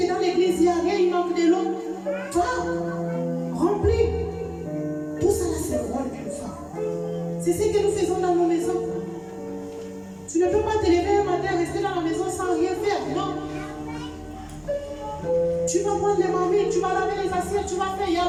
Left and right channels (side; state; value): both; identical; correlation 1.00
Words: dans l'église, il n'y a rien, il manque de l'eau. Toi, remplis. Tout ça, là, c'est le rôle d'une femme. C'est ce que nous faisons dans nos maisons. Tu ne peux pas te lever un matin, rester dans la maison sans rien faire. Non. Tu vas prendre les mamies, tu vas laver les assiettes, tu vas faire. Il y a